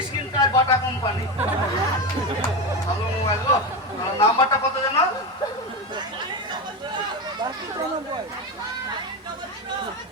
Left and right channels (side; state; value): both; normal; correlation 0.17